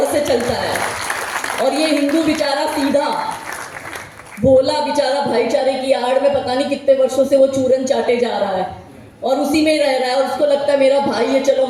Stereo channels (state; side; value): identical; both; correlation 1.00